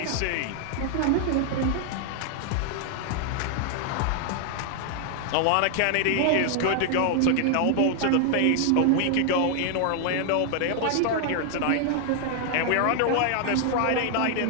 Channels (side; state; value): both; different; correlation 0.00